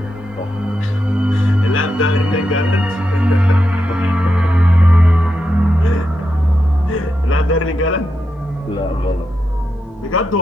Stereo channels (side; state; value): both; normal; correlation 0.86